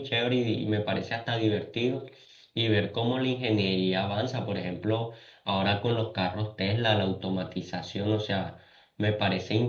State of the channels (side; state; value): both; identical; correlation 1.00